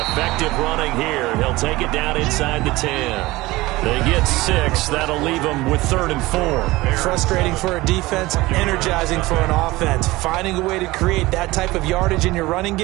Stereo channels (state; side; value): quieter; left; 19.7 dB